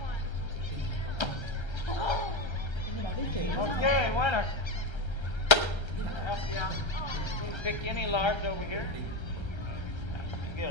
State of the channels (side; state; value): right; late; 1.3 ms